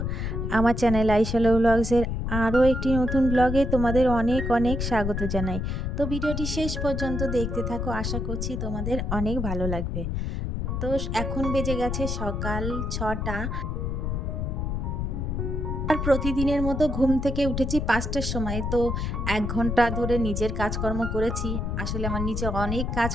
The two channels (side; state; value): left; noise; rumble, 2 dB below the sound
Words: আমার চ্যানেল আইশালো ব্লগসের আরও একটি নতুন ব্লগে তোমাদের অনেক অনেক স্বাগত জানাই। তো ভিডিওটি শেষ পর্যন্ত দেখতে থাকো, আশা করছি তোমাদের অনেক ভালো লাগবে। তো এখন বেজে গেছে সকাল ৬টা। আর প্রতিদিনের মতো ঘুম থেকে উঠেছি ৫টার সময়। তো ১ ঘন্টা ধরে নিজের কাজকর্ম করেছি। আসলে আমার নিচে অনেক